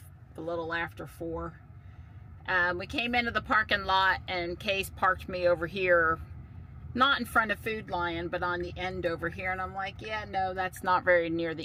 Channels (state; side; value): identical; both; correlation 1.00